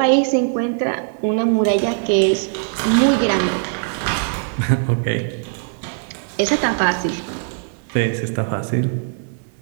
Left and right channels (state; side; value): silent; left; 66 dB below the other